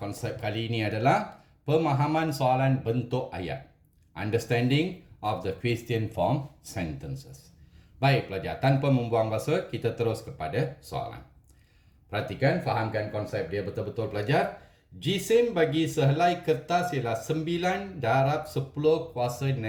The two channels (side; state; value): both; identical; correlation 1.00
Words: kali ini adalah pemahaman soalan bentuk ayat. Understanding of the question form sentences. Baik pelajar, tanpa membuang masa, kita terus kepada soalan. Perhatikan, fahamkan konsep dia betul-betul pelajar. Jisim bagi sehelai kertas ialah 9 darab 10 kuasa